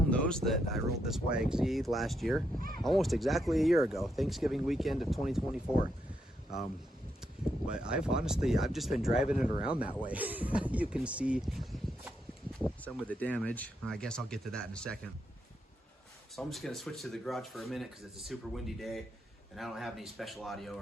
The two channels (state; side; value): normal; both; correlation 0.80